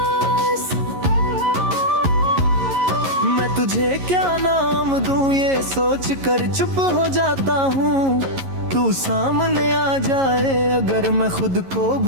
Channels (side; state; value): left; late; 11 ms